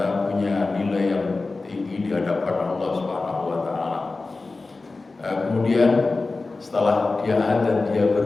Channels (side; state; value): right; quieter; 3.6 dB